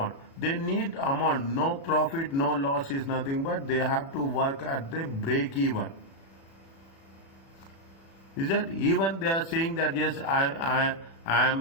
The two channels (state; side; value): late; right; 36 ms